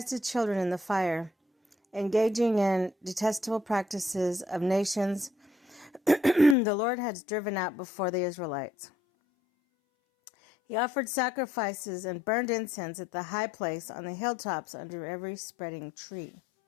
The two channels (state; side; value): drops out; right; at 6.6 s